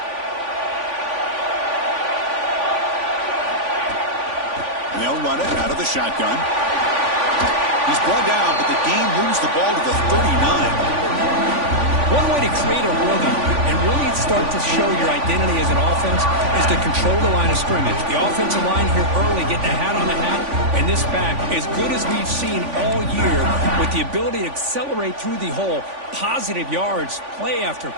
And they'll run it out of the shotgun. He's brought down, but the game moves the ball to the 39. One way to create a rhythm and really start to show your identity as an offense is to control the line of scrimmage. The offensive line here early getting a hat on the hat, and this back, as good as we've seen all year, with the ability to accelerate through the hole, positive yards, play after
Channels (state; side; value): late; left; 3.5 ms